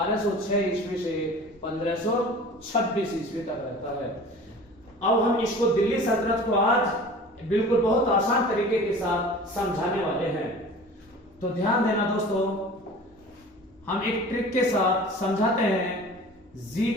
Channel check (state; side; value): normal; both; correlation 0.41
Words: ईस्वी से 1526 ईस्वी तक रहता है। अब हम इसको दिल्ली सल्तनत को आज बिल्कुल बहुत आसान तरीके के साथ समझाने वाले हैं। तो ध्यान देना दोस्तों, हम एक ट्रिक के साथ समझाते हैं।